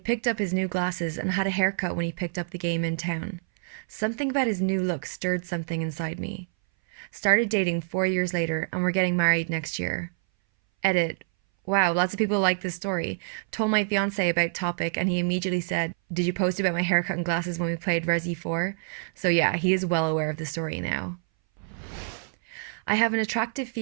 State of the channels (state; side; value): silent; left; 59 dB below the other